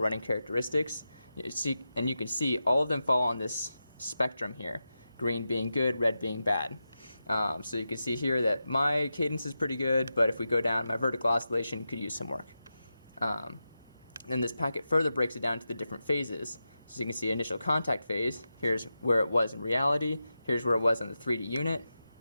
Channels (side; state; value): both; inverted; correlation -0.91